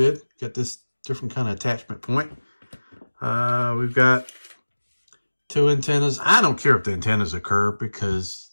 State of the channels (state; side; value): inverted; both; correlation -1.00